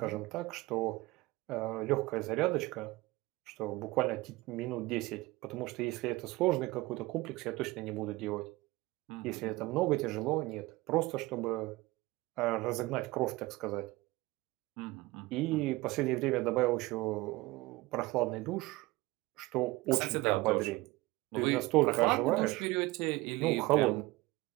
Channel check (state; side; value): quieter; left; 20.5 dB